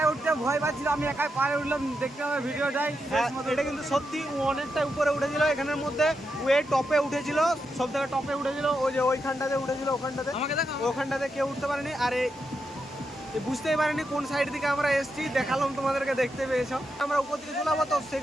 উঠতে ভয় পাচ্ছিল, আমি একাই পারে উঠলাম, দেখতে হবে ভিডিওটাই। এটা কিন্তু সত্যি ও অনেকটা উপরে উঠেছিল, এখানের মধ্যে ও টপে উঠেছিল, সব থেকে টপে উঠেছিল, ওই যে ওইখানটাতে উঠেছিল, ওখানটাতে ওখানটাতে কেউ উঠতে পারেনি। আর বুঝতেই পারিনি কোন সাইড থেকে আমরা এসেছি, দেখালাম তোমাদেরকে, দেখতে পেয়েছ। আমরা উপর দিকে চলে যাবো, তো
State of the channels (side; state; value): both; normal; correlation 0.85